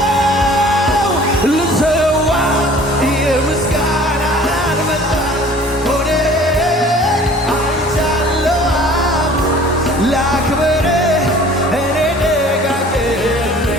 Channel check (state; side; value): normal; both; correlation 0.49